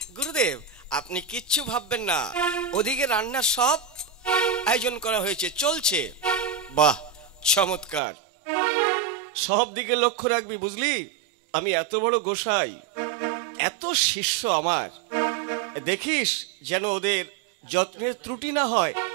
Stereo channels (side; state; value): left; drops out; at 8.0 s